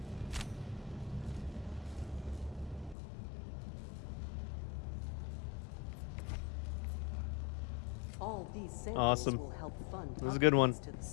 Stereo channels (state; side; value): drops out; right; at 3.0 s